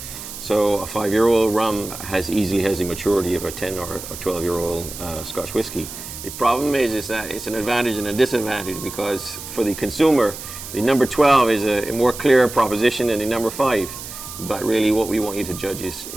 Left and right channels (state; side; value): noise; right; hiss, 11 dB below the sound